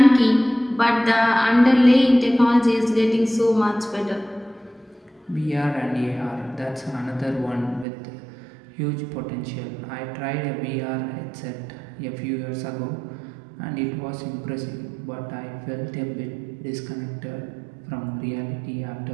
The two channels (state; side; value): drops out; left; at 7.9 s